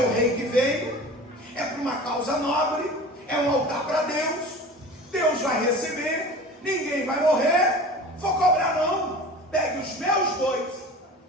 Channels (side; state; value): both; normal; correlation 0.38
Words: rei que veio, é para uma causa nobre, é um altar para Deus. Deus vai receber, ninguém vai morrer, vou cobrar não. Pegue os meus bois,